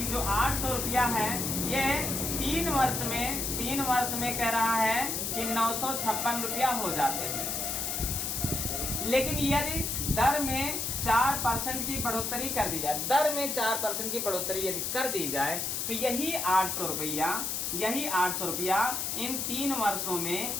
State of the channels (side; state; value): left; noise; hiss, 1 dB below the sound